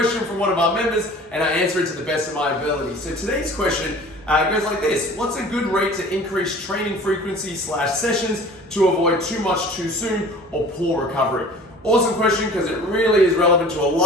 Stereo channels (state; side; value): normal; both; correlation 0.45